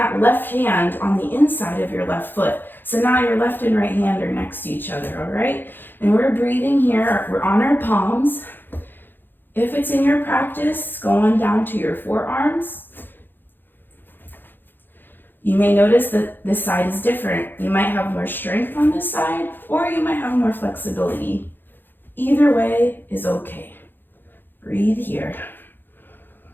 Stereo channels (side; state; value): right; late; 0.096 ms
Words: left hand on the inside of your left foot. So now your left and right hand are next to each other, all right? And we're breathing here. We're on our palms. If it's in your practice, go on down to your forearms. You may notice that this side is different. You might have more strength on this side, or you might have more flexibility. Either way is okay. Breathe here.